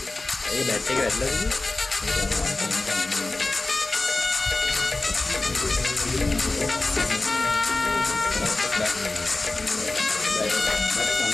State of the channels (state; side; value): quieter; right; 3.1 dB